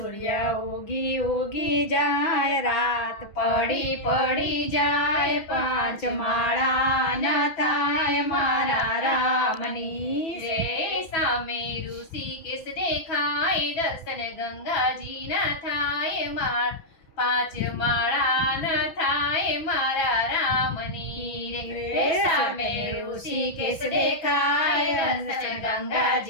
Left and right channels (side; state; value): right; late; 6.1 ms